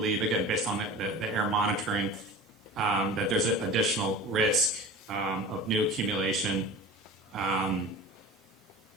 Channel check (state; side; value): normal; both; correlation 0.37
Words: again, based on the air monitoring, that there's an additional risk of new accumulation.